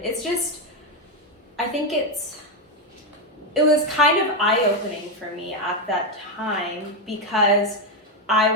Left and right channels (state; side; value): normal; both; correlation 0.06